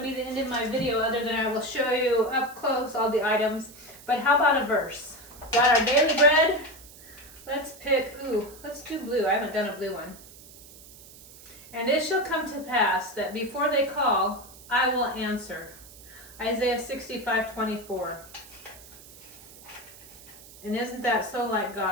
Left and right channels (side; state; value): right; noise; hiss, 20 dB below the sound